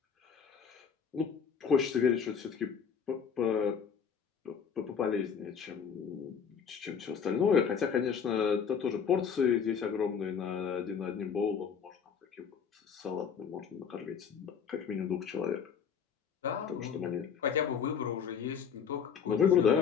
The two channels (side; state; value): right; quieter; 7.0 dB